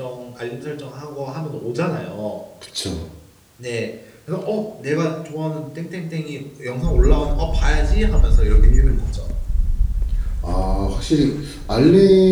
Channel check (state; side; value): identical; both; correlation 1.00